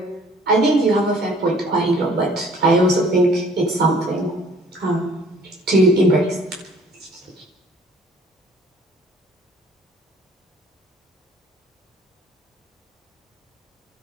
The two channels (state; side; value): normal; both; correlation 0.55